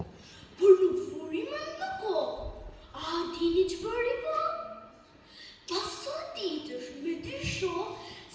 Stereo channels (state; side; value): identical; both; correlation 1.00